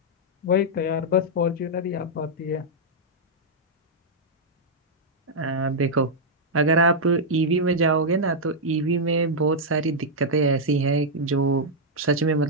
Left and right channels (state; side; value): normal; both; correlation -0.05